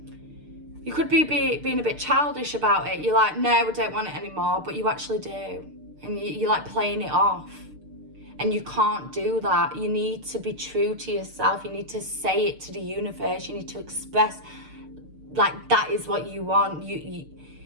could be being a bit childish about it. You're like, no, I don't want it anymore, but you actually do. And you're like playing it off. And you can't do that. You need to be true to yourself. You need to say it to the universe. You need to express, like, that is what you want.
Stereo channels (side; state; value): left; late; 6.6 ms